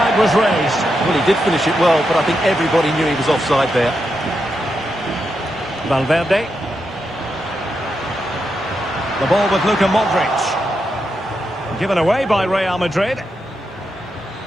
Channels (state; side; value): normal; both; correlation 0.85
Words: was raised. Well, he did finish it well, but I think everybody knew he was offside there. Valverde. The ball with Luka Modric. Given away by Real Madrid.